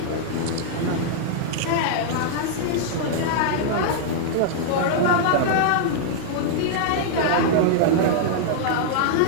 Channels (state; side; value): different; both; correlation -0.01